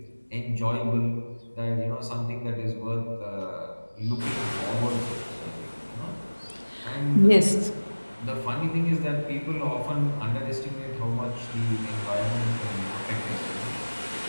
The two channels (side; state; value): both; inverted; correlation -1.00